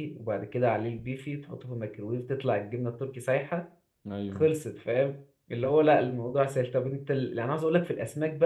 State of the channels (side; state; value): both; identical; correlation 1.00